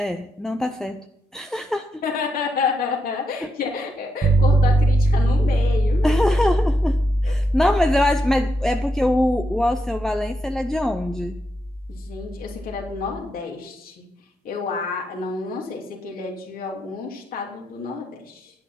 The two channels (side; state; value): both; normal; correlation 0.83